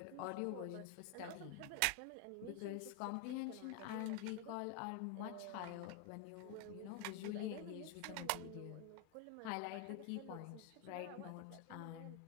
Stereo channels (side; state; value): both; different; correlation 0.01